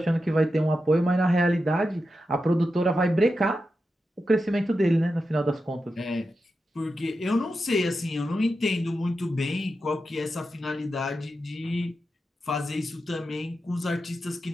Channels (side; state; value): both; normal; correlation 0.89